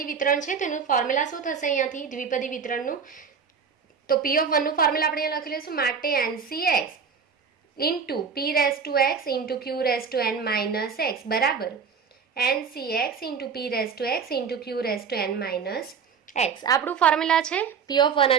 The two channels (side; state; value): left; quieter; 6.1 dB